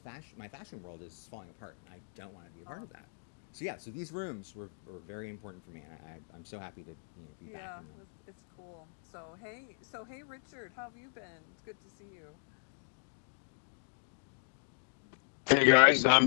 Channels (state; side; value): silent; right; digital silence